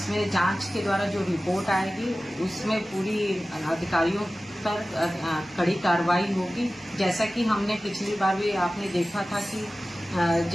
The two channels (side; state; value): both; normal; correlation 0.96